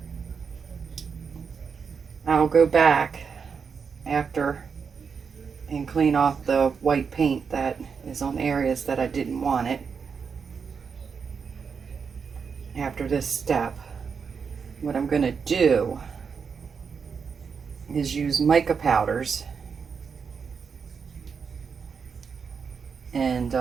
I'll go back after and clean off the white paint that is on areas that I didn't want it. After this step, what I'm going to do is use mica powders and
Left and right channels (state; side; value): quieter; left; 6.0 dB